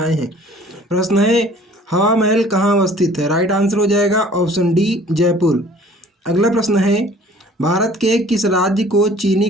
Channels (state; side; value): normal; both; correlation 0.52